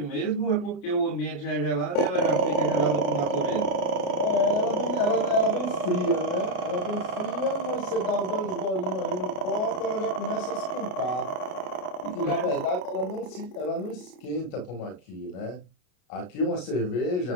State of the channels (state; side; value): late; right; 33 ms